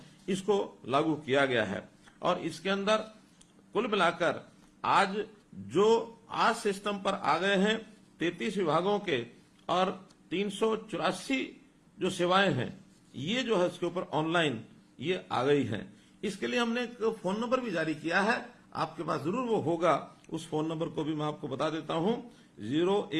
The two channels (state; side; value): identical; both; correlation 1.00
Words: इसको लागू किया गया है। और इसके अंदर कुल मिलाकर आज जो आज सिस्टम पर आ गए हैं 33 विभागों के और 384 जो सेवाएं हैं, ये जो है इसके ऊपर ऑनलाइन ये आ गई हैं। इसके लिए हमने एक फोन नंबर भी जारी किया है, आपके पास जरूर वो होगा। उस फोन नंबर को भी मैं आपको बता देता हूं,